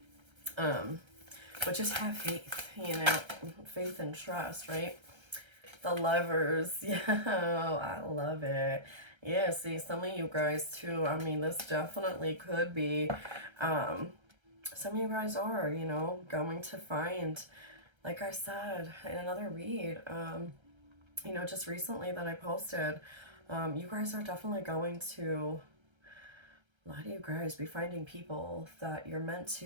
But just have faith, faith and trust, right? The Lovers, yeah, I love it. Yeah, see, some of you guys too, I mean, this definitely could be, some of you guys are, going to find, like I said in another read, just recently that I posted, you guys are definitely going to, a lot of you guys be finding people that you're meant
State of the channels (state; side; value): late; left; 1.3 ms